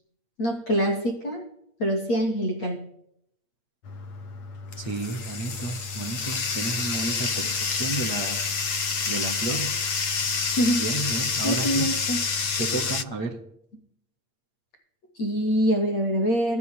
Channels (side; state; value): right; late; 8.6 ms